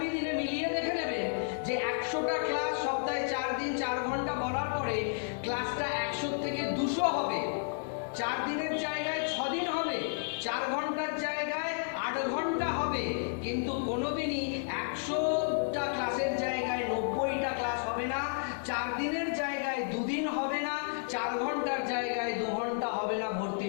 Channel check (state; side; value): silent; right; digital silence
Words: দিনে মিলিয়ে দেখে নেবেন যে 100টা ক্লাস সপ্তাহে 4 দিন 4 ঘন্টা বলার পরে ক্লাসটা 100 থেকে 200 হবে, 4 দিনের জায়গায় 6 দিন হবে, 4 ঘন্টার জায়গায় 8 ঘন্টা হবে, কিন্তু কোনোদিনই 100টা ক্লাসের জায়গায় 90টা ক্লাস হবে না, 4 দিনের জায়গায় 2 দিন হবে না, 4 ঘন্টার জায়গায় 2 ঘন্টা হবে না।